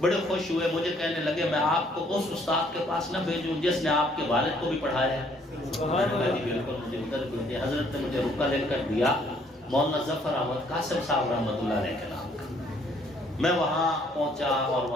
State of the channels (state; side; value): normal; both; correlation 0.63